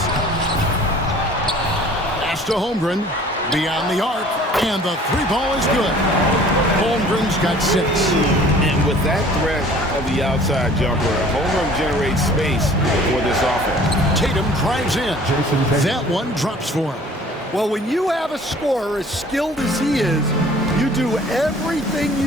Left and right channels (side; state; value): both; normal; correlation 0.50